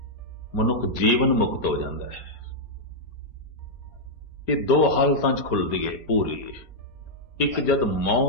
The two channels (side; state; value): right; late; 4.3 ms